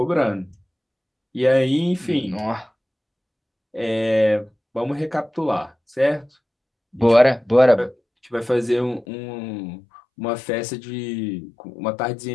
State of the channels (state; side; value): drops out; right; at 9.1 s